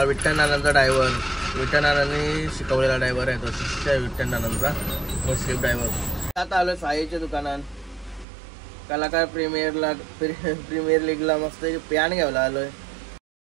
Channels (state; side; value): drops out; left; at 8.2 s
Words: विठ्ठल नानांचा ड्रायव्हर, विठ्ठल नानांनी शिकवलेला ड्रायव्हर आहे तो, शिष्य विठ्ठल नानांचा मुस्लिम ड्रायव्हर. आता आलो साईच्या दुकानात, कलाकार प्रीमियर लीगला मस्त पॅन घ्यायला आलोय.